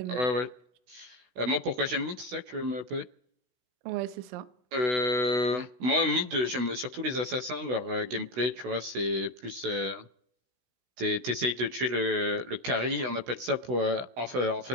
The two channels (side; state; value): left; late; 16 ms